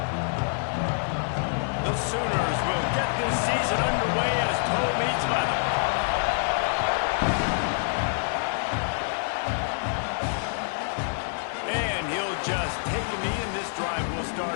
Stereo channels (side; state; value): right; silent; 60 dB below the other